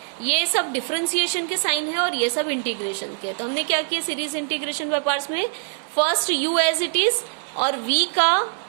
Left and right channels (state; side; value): silent; left; 63 dB below the other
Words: ये सब डिफरेंशिएशन के साइन है और ये सब इंटीग्रेशन के। तो हमने क्या किया, सीरीज इंटीग्रेशन बाय पार्ट्स में first u as it is और v का